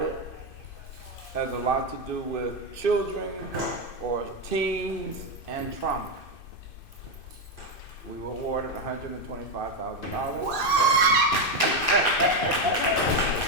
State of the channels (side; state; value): right; late; 2.6 ms